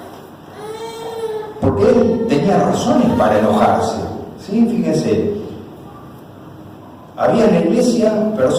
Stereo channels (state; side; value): identical; both; correlation 1.00